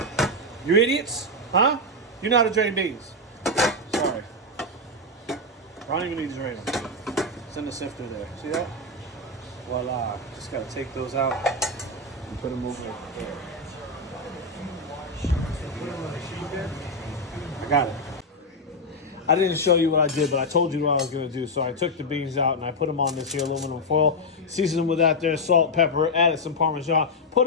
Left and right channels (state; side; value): normal; both; correlation 0.02